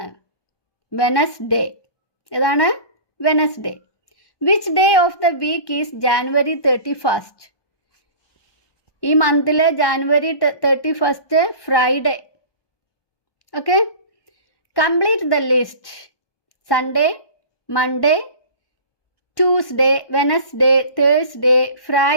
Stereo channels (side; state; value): right; late; 1.1 ms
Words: വെനസ്ഡേ. ഏതാണ്? Wednesday. Which day of the week is January 31st? ഈ മന്തിലെ January 31st Friday. Okay, complete the list. Sunday, Monday, Tuesday, Wednesday, Thursday,